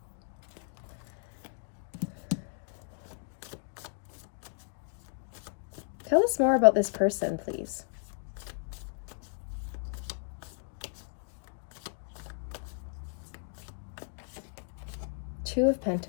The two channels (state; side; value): silent; right; 55 dB below the other